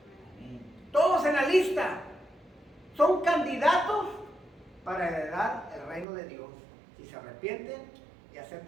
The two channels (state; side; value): drops out; left; at 6.1 s